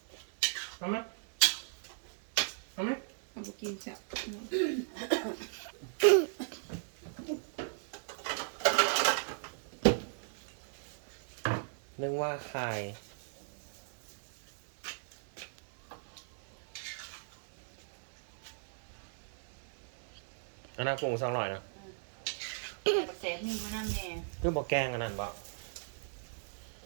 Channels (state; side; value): silent; left; digital silence